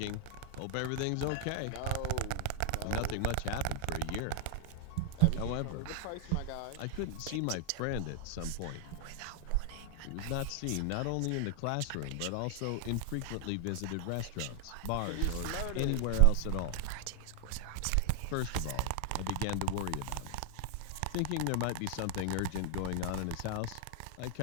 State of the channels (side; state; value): both; different; correlation 0.00